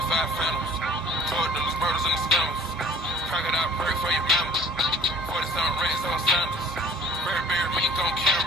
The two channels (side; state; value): both; normal; correlation 0.51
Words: 5 phantoms. Told those murders and the scammers. Crocodile bird for your members. 40-something rats on sandals. Bear mink on